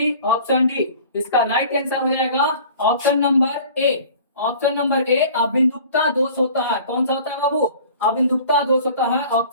option D. इसका राइट आंसर हो जाएगा option number A. Option number A अभिमुखता दोष होता है। कौन सा होता है बाबू? अभिमुखता दोष होता है।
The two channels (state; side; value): inverted; both; correlation -0.46